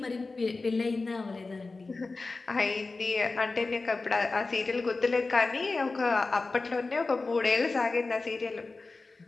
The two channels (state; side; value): quieter; right; 3.7 dB